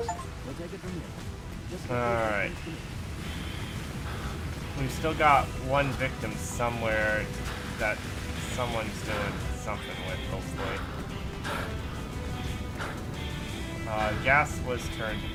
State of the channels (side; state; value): both; identical; correlation 1.00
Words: We'll take it from here. Just Alright. We've still got one victim somewhere that someone's doing something with, hopefully. Gas was turned